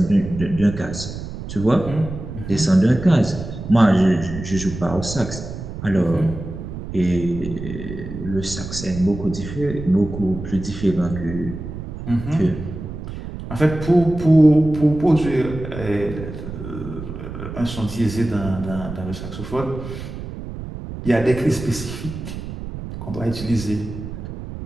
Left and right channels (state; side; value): noise; right; rumble, 9 dB below the sound